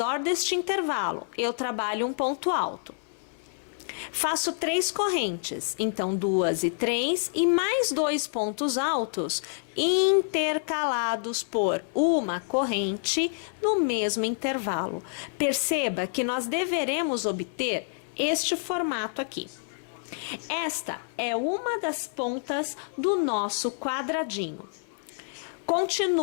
deste intervalo. Eu trabalho um ponto alto. Faço 3 correntes, então 2 e 3 e mais 2 pontos altos intercalados por uma corrente no mesmo intervalo. Perceba que nós deveremos obter este formato aqui. Esta é uma das pontas do nosso quadradinho.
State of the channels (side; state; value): right; silent; 59 dB below the other